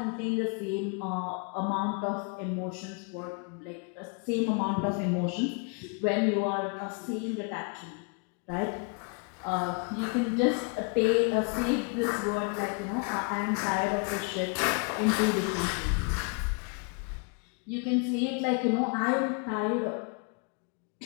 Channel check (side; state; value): right; quieter; 35.0 dB